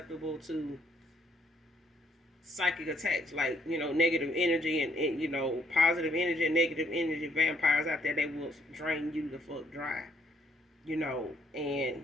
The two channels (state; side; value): normal; both; correlation 0.69